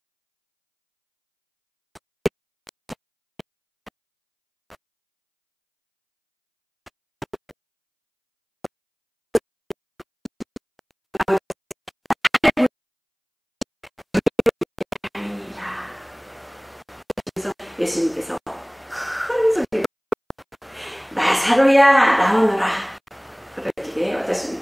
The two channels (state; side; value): identical; both; correlation 1.00